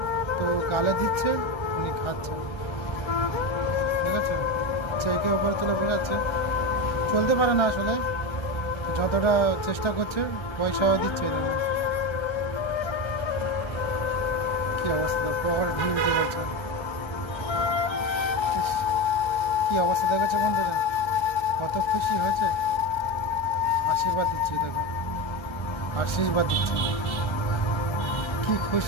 তো গালে দিচ্ছে, উনি খাচ্ছে। ঠিক আছে, একে উপরে তুলে বেড়াচ্ছে। চলতে পারে না আসলে, যতটা চেষ্টা করছে পয়সাও দিচ্ছে। দেখো কি অবস্থা, পকেট ঢিল দিয়ে বলছে। ইস, কি অবস্থা দেখেছো বন্ধুরা, কত খুশি হয়েছে। আশীর্বাদ দিচ্ছি দেখো, আশীর্বাদ দিচ্ছি, কি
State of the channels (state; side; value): late; right; 1.3 ms